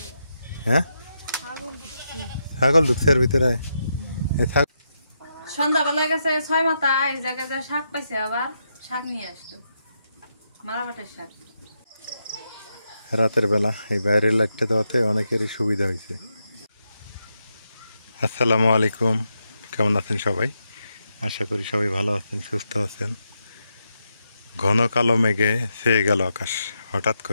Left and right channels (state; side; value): inverted; both; correlation -0.84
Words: হ্যাঁ, ছাগল ঢুকছে এর ভিতরে। সন্ধ্যাবেলা গেছে 6 মাথা, এই জায়গায় যা শাক পাইছে, আবার শাক নিয়ে আসলো, মারাবাটের শাক। রাতের বেলা এই বাইরের লাইটটা দেওয়াতে অনেকেরই সুবিধা হয়েছে। আসসালামু আলাইকুম, কেমন আছেন সবাই? আশা করি সবাই ভালো আছেন, সুস্থ আছেন। ঘন কালো মেঘে ছেয়ে গেল আকাশ হঠাৎ